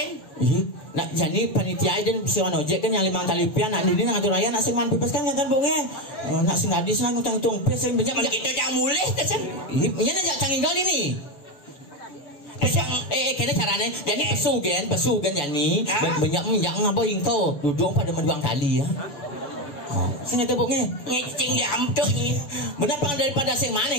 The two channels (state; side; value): late; right; 6.9 ms